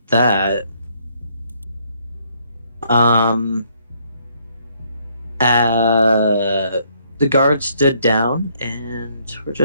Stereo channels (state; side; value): inverted; both; correlation -0.68